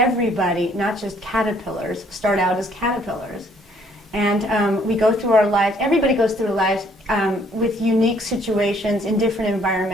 not just caterpillars, start out as caterpillars. And we go through our lives, everybody goes through their lives with unique situations in different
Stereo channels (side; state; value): both; normal; correlation 0.63